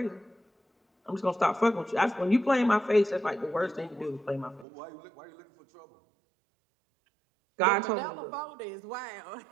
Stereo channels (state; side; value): drops out; left; at 4.7 s